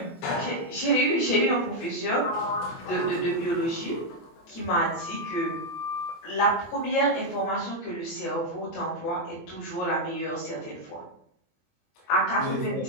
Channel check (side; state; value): right; late; 24 ms